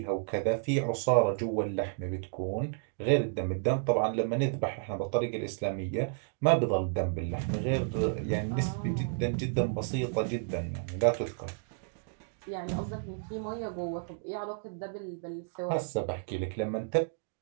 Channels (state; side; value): silent; left; digital silence